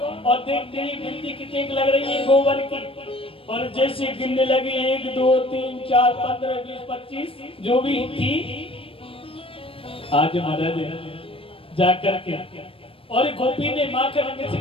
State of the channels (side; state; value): right; late; 0.27 ms